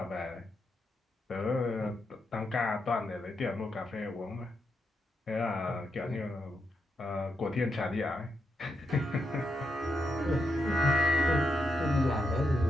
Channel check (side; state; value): both; normal; correlation 0.82